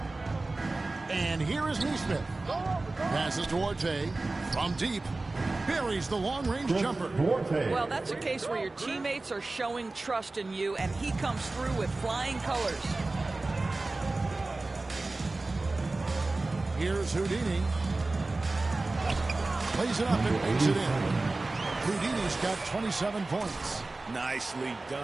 And here is Neesmith. Passes to Orte from deep. Buries the long-range jumper. Well, that's a case where your teammates are showing trust in you, and he comes through with flying colors. Here's Houdini. Plays it up and makes it in. Houdini's got 27 points. Nicely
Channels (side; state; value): left; quieter; 3.2 dB